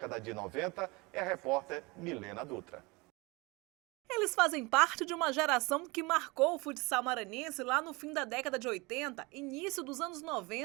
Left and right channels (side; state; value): left; quieter; 25.6 dB